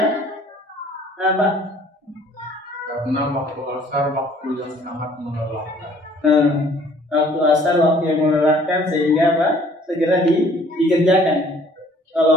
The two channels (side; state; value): both; normal; correlation 0.57